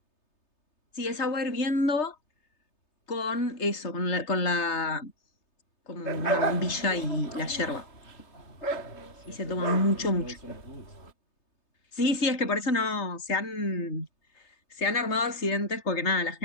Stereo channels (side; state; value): right; late; 3.3 ms